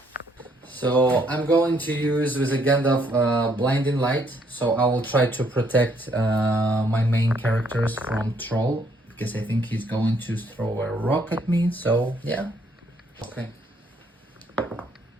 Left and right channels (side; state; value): both; normal; correlation 0.69